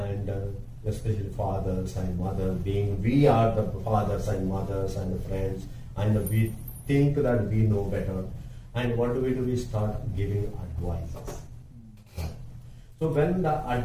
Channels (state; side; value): identical; both; correlation 1.00